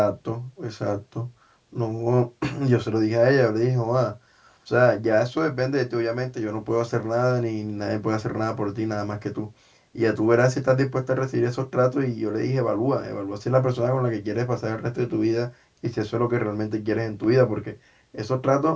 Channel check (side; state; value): both; identical; correlation 1.00